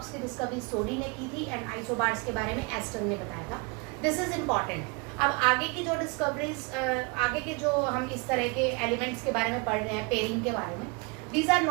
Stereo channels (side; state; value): left; quieter; 30.1 dB